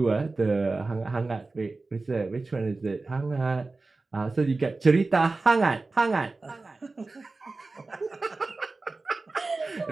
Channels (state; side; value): quieter; left; 3.5 dB